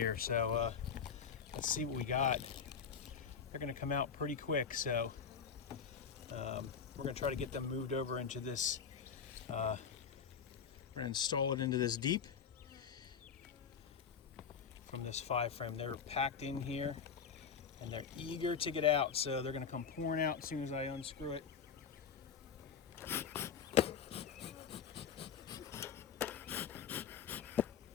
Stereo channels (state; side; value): quieter; right; 6.8 dB